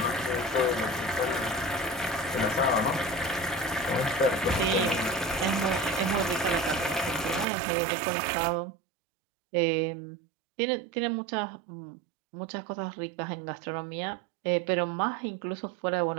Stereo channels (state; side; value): drops out; left; at 7.5 s